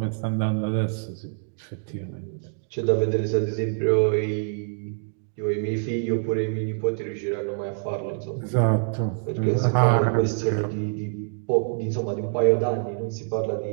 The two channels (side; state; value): left; silent; digital silence